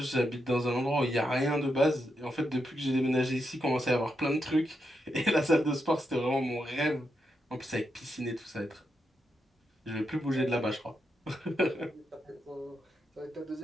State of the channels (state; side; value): normal; both; correlation 0.84